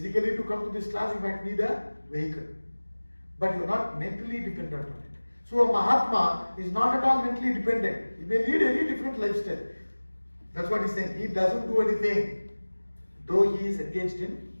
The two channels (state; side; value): inverted; both; correlation -1.00